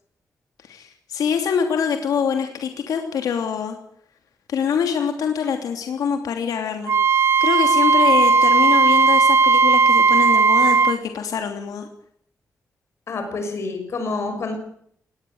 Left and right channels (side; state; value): both; normal; correlation 0.43